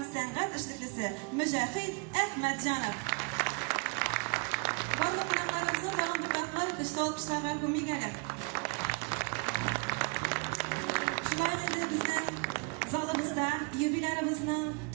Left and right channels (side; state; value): left; quieter; 32.0 dB